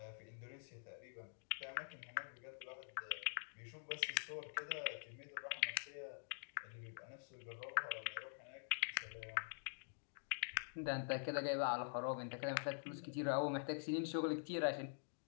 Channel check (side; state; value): right; silent; digital silence